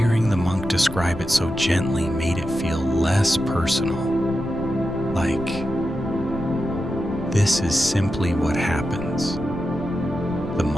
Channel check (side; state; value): left; noise; rumble, 12 dB below the sound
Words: the monk describe it so gently made it feel less personal, like, this is simply what happens. The